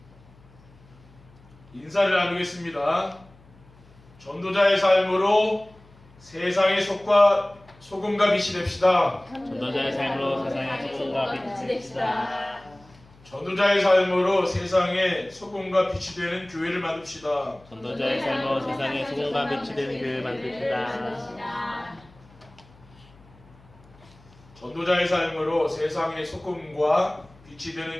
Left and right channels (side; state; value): left; noise; hum, 26 dB below the sound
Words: 인사를 나누겠습니다. 전도자의 삶으로 세상의 소금과 빛이 됩시다. 전도자의 삶으로 세상의 소금과 빛이 됩시다. 전도자의 삶으로 세상의 소금과 빛이 되는 교회를 만듭시다. 전도자의 삶으로 세상의 소금과 빛이 되는 교회를 만듭시다. 전도자의 삶으로 세상의 소금과 빛이 되는